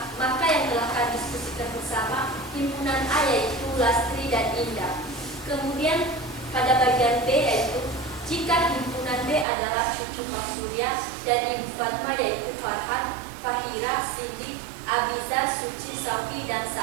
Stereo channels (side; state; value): left; drops out; at 9.5 s